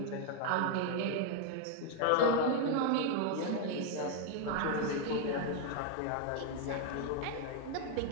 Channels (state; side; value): different; both; correlation 0.00